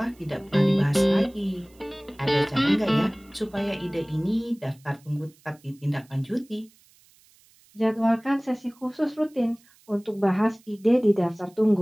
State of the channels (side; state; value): right; noise; hiss, 30 dB below the sound